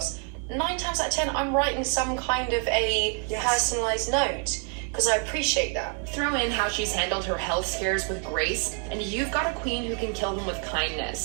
9 times out of 10, I'm writing some kind of a personalised note, because I appreciate that. Throw in how she's handled her health scares with grace, and you've got a queen who can kill them with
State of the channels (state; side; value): quieter; left; 39.9 dB